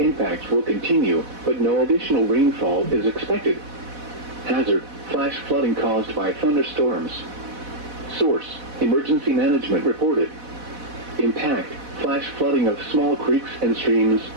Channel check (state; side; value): late; left; 4.1 ms